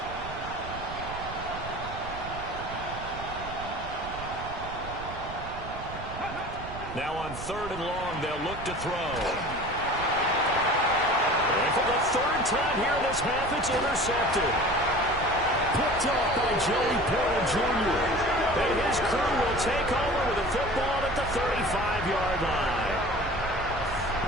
on 3rd and long, they'll look to throw. And for the 3rd time here in this half, it's intercepted. Picked off by Joey Porter Jr. And his crew will take over with the football at the 35-yard line.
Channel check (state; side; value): noise; right; rumble, 11 dB below the sound